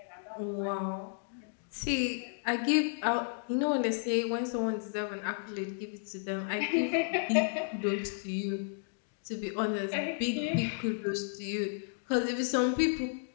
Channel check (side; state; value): right; silent; digital silence